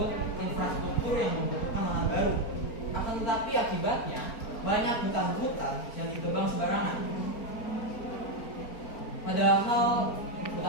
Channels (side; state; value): right; late; 4.4 ms